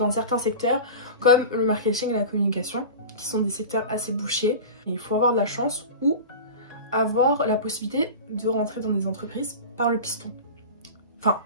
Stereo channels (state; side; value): inverted; both; correlation -0.31